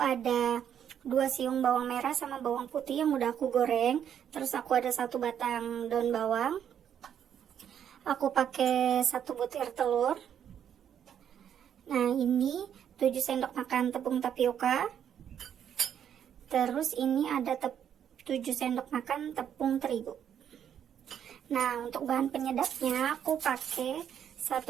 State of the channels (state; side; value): quieter; left; 9.1 dB